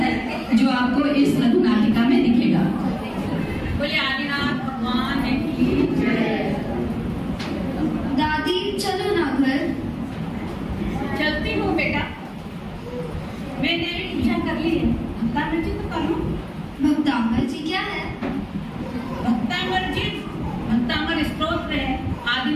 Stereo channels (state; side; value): identical; both; correlation 1.00